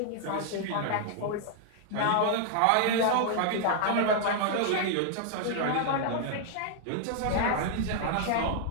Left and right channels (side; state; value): both; different; correlation 0.00